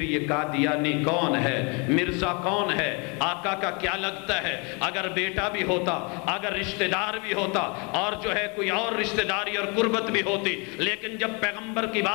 یہ قادیانی کون ہے؟ مرزا کون ہے؟ آقا کا کیا لگتا ہے؟ اگر بیٹا بھی ہوتا، اگر رشتہ دار بھی ہوتا، اور جو ہے کوئی اور رشتہ داری اور قربت بھی ہوتی، لیکن جب پیغمبر کی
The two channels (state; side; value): quieter; right; 31.7 dB